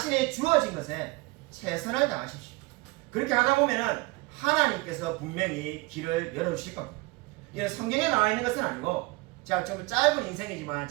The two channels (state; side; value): quieter; left; 23.9 dB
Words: 주어진 것에 최선을 다하십시오. 그렇게 하다 보면은 하나님께서 분명히 길을 열어주실 겁니다. 이게 성경에 나와 있는 것은 아니고 제가 좀 짧은 인생이지만